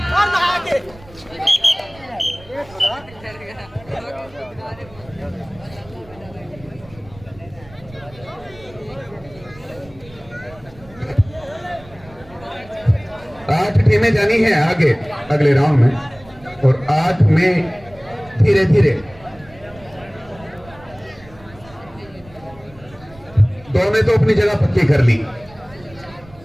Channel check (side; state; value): right; noise; rumble, 22 dB below the sound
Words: आठ टीमें जानी है आगे अगले राउंड में, और 8 में धीरे धीरे 2 ने तो अपनी जगह पक्की कर ली।